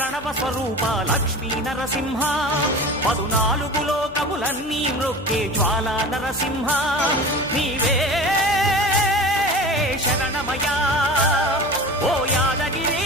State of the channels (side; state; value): left; noise; hum, 21 dB below the sound